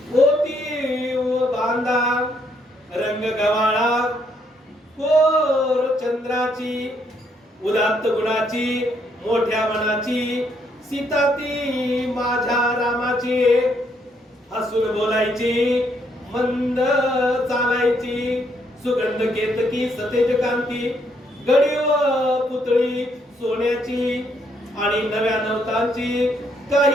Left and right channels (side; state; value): both; normal; correlation 0.72